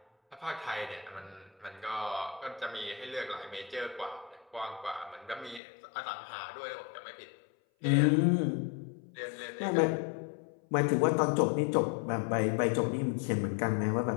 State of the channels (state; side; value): drops out; right; at 5.6 s